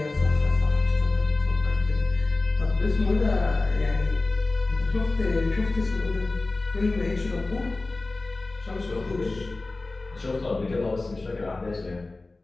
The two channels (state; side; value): quieter; right; 3.2 dB